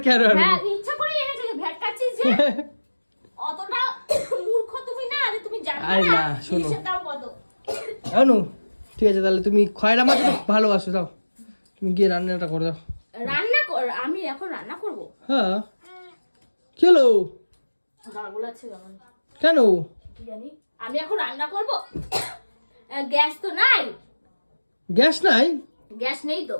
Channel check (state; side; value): inverted; both; correlation -1.00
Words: কেন আনবো? হ্যাঁ ইচ্ছা করে এনেছে, যে ভ্যাট কাটছিস যে। অতটা মূর্খ তুমি না যে তুমি জানো আরে না না, শোনো। ইলিশের দাম কত। জানো ঠিক আছে, তাহলে তুমি খয়রা মাছ তো ভালোবাসো, দাও তুমি গিয়ে রান্নাটা করে দাও। রান্না কর? আমি এখন রান্না করব? হ্যাঁ কি হলো? গাগুলো আছে কেমন কেন? কি জানি, আমি এখন রান্না করব। গ্যাস তো নাই। গ্যাস নাই? গ্যাস নেই তো।